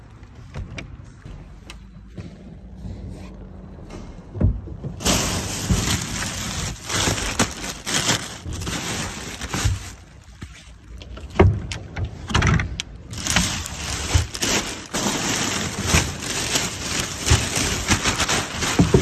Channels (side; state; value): both; identical; correlation 1.00